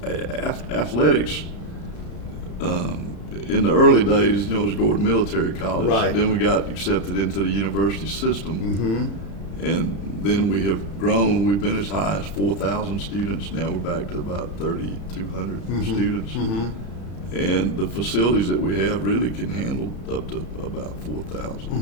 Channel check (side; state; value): right; late; 33 ms